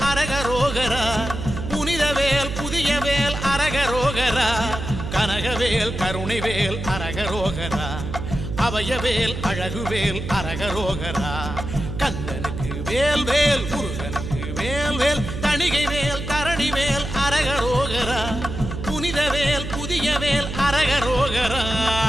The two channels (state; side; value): noise; right; hum, 6 dB below the sound